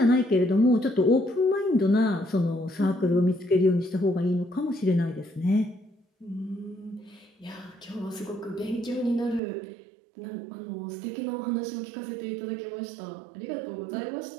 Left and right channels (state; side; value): drops out; left; at 9.4 s